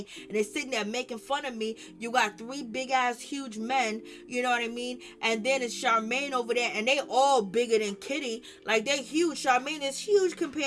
and they're sitting there making fun of me. You got 3 big ass huge men, you know what I mean? And then it's Charmaine over there, and they all bigger than Kitty. Like, they huge. Charmaine is huge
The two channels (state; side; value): identical; both; correlation 1.00